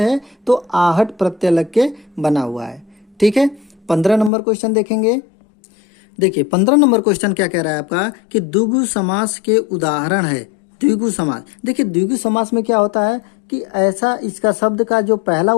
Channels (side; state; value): right; drops out; at 4.3 s